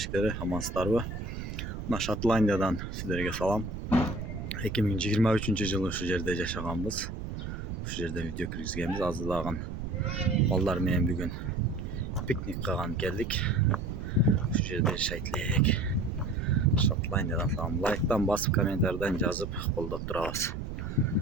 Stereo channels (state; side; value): noise; right; rumble, 6 dB below the sound